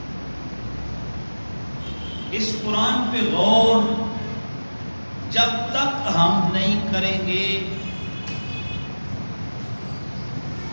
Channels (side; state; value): both; inverted; correlation -1.00